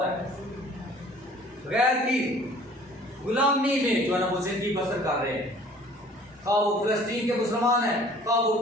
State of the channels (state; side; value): normal; both; correlation 0.51